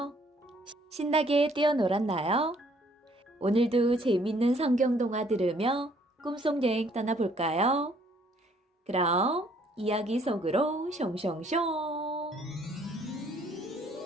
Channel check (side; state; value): both; normal; correlation 0.63